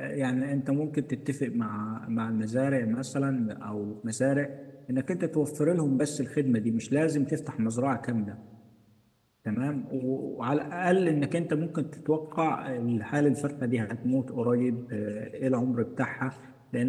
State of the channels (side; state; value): both; identical; correlation 1.00